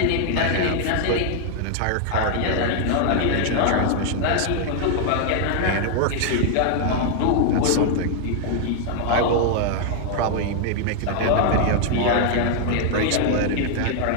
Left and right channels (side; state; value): both; different; correlation 0.00